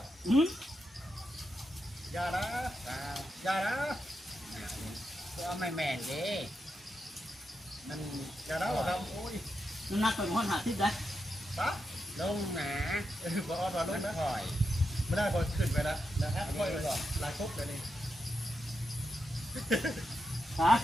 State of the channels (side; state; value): both; normal; correlation 0.86